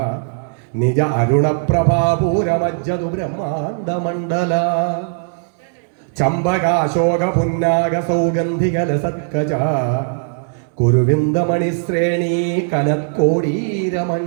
നിജ അരുണപ്രഭാപൂരമജ്ജതു ബ്രഹ്മാണ്ഡമണ്ഡല ചമ്പകാശോക പുന്നാഗ സൗഗന്ധികലസത്കജ കുരുവിന്ദമണിശ്രേണീ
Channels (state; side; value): silent; left; digital silence